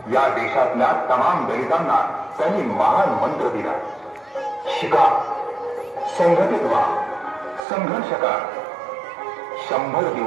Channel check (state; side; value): drops out; left; at 7.7 s